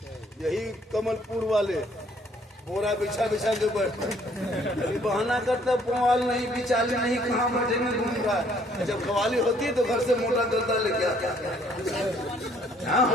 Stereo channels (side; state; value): both; normal; correlation 0.63